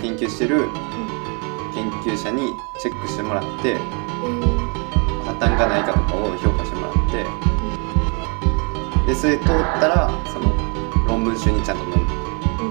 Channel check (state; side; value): quieter; left; 35.5 dB